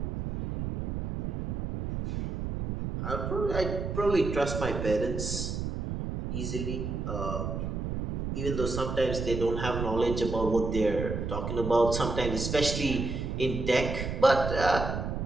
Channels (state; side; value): noise; right; rumble, 3 dB below the sound